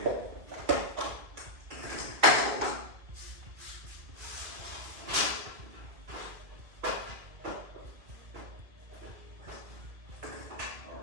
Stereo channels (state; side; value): late; left; 2.5 ms